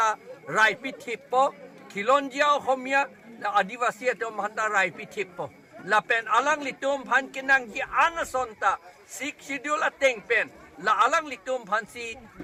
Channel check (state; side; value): identical; both; correlation 1.00